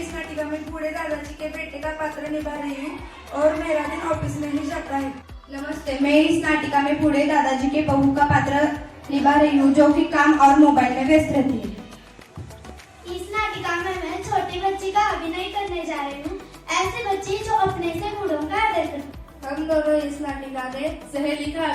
नाटिका में बूढ़े दादाजी के बेटे का पात्र निभा रही हूँ और मेरा दिन ऑफिस में ही जाता है। नमस्ते, मैं इस नाटिका में बूढ़े दादाजी के बहू का पात्र निभा रही हूँ जो कि काम और मोबाइल में व्यस्त रहती है। इस नाटिका में मैं छोटी बच्ची का अभिनय करने जा रही हूँ, ऐसे बच्ची जो अपने से बूढ़ों का आदर करती। हम दोनों इस नाटिका में सहेली का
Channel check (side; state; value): both; identical; correlation 1.00